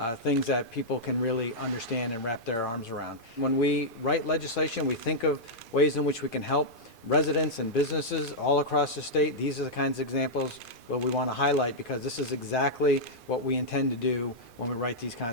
things that people can really understand and wrap their arms around. When we write legislation, we think of ways in which we can help residents and businesses all across the state. These are the kinds of examples that we want to highlight because this is exactly what we intend to do when we write these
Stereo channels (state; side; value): late; right; 2.4 ms